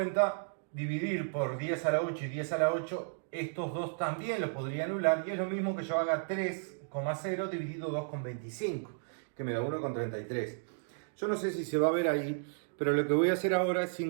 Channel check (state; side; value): silent; left; digital silence